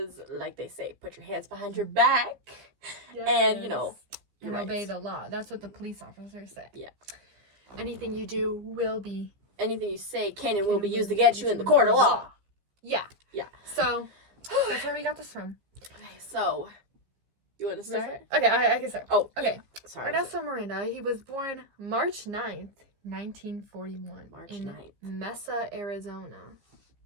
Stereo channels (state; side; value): late; left; 15 ms